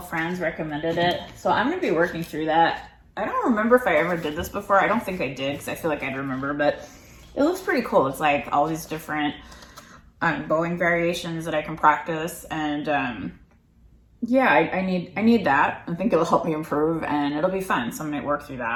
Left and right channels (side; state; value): both; identical; correlation 1.00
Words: Franz, recommended it. So I'm going to be working through that. I don't remember if I ever did this before. I don't think I did, because I feel like I'd remember, but it looks pretty cool. It's like all these different bowing variations that I can practice, and yeah, I need that. I think it'll help me improve, and it'll be fun, so I'm going to work through